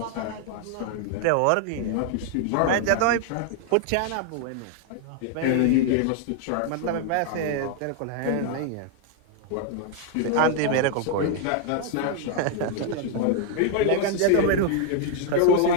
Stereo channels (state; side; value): different; both; correlation 0.00